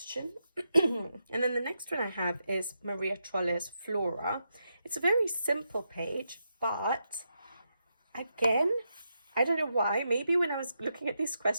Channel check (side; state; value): both; inverted; correlation -0.84